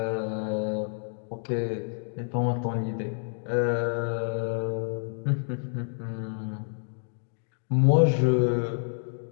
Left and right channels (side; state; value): right; silent; digital silence